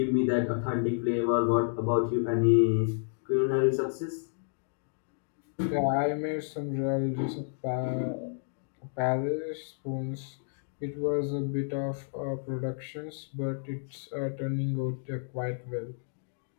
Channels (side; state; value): right; silent; digital silence